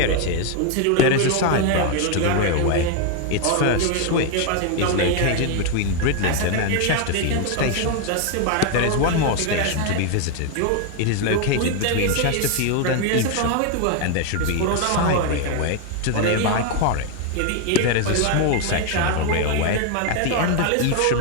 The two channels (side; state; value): both; different; correlation 0.01